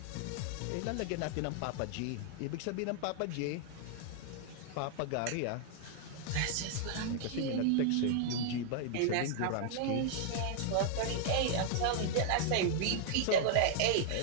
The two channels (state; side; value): different; both; correlation 0.00